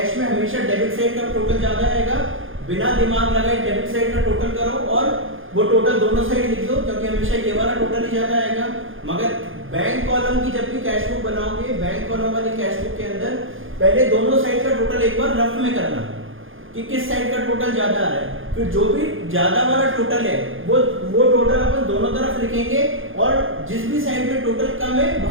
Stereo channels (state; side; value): late; left; 0.59 ms